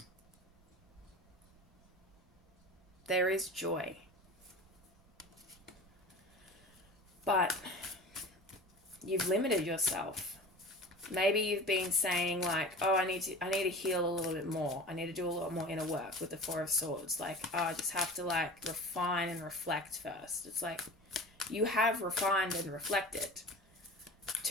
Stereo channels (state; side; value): noise; right; rumble, 29 dB below the sound